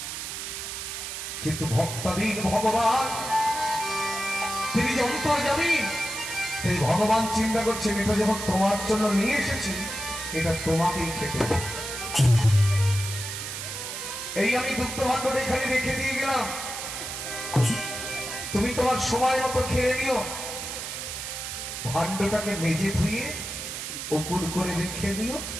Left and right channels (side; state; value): right; noise; hiss, 6 dB below the sound